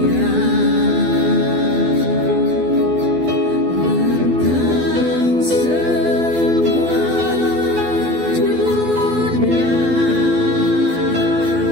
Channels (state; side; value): late; left; 12 ms